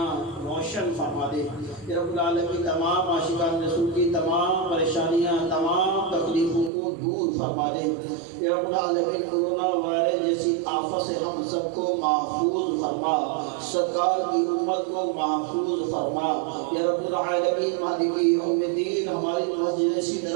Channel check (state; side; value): drops out; left; at 6.7 s